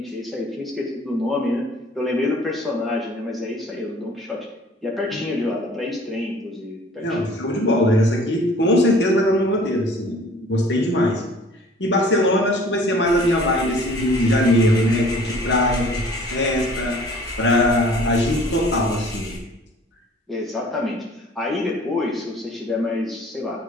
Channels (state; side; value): normal; both; correlation 0.51